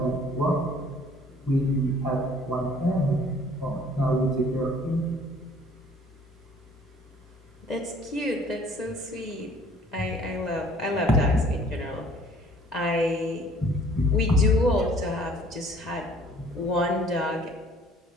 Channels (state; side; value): normal; both; correlation 0.55